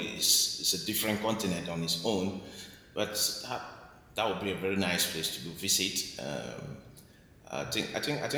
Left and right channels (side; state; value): both; identical; correlation 1.00